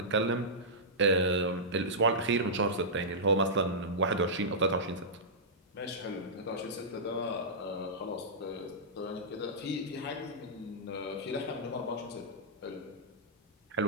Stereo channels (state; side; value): normal; both; correlation -0.14